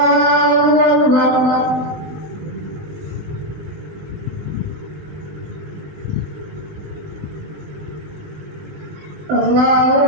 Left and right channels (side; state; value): left; late; 20 ms